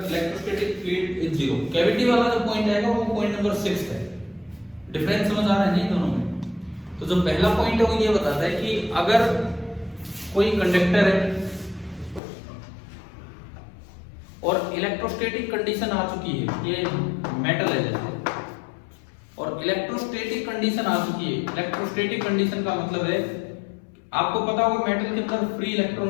electrostatic field is 0। Cavity वाला जो पॉइंट आएगा वो पॉइंट नंबर 6 है। डिफरेंस समझ आ रहा है नहीं दोनों में? तो जो पहला पॉइंट है वो ये बताता है कि अगर कोई कंडक्टर है और इलेक्ट्रोस्टैटिक कंडीशन आ चुकी है, ये मेटल है जैसे, और इलेक्ट्रोस्टैटिक कंडीशन आ चुकी है। इलेक्ट्रोस्टैटिक कंडीशन का मतलब है, आपको पता होगा मेटल के अंदर फ्री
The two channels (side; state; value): right; drops out; at 12.2 s